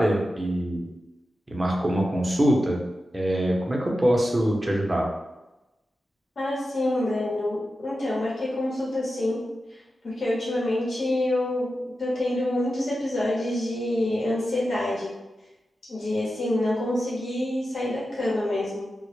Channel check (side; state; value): both; normal; correlation 0.91